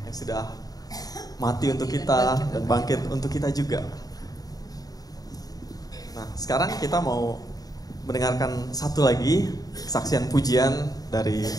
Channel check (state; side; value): late; right; 0.18 ms